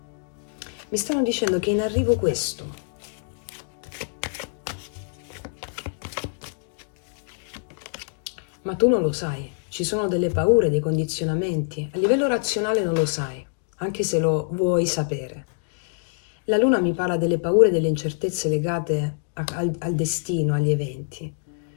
Mi stanno dicendo che è in arrivo questo. Ma tu non lo sai, ci sono delle paure, dei condizionamenti. A livello razionale non lo sai, anche se lo vuoi sapere. La luna mi parla delle paure e delle incertezze legate al destino, agli eventi.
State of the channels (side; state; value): right; silent; digital silence